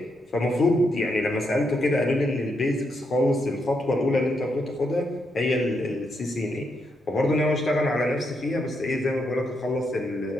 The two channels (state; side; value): normal; both; correlation 0.80